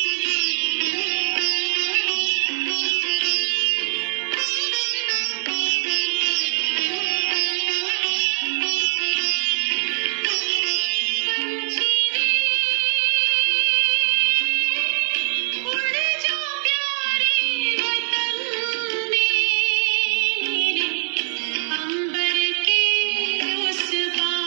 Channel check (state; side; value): silent; left; digital silence